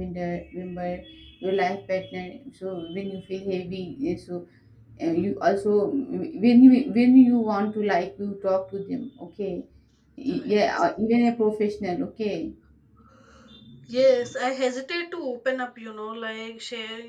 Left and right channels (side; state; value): both; identical; correlation 1.00